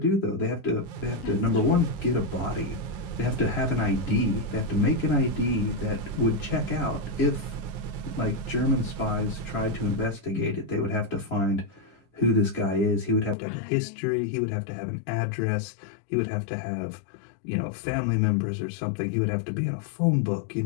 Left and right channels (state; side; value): drops out; right; at 13.4 s